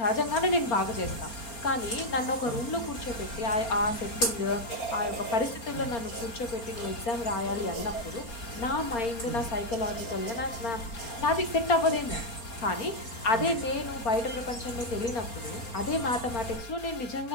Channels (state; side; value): late; right; 4.3 ms